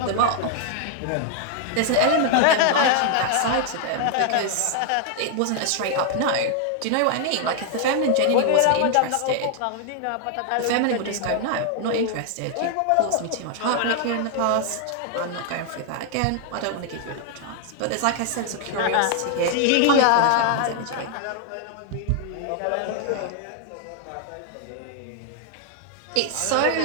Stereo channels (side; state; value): both; different; correlation 0.00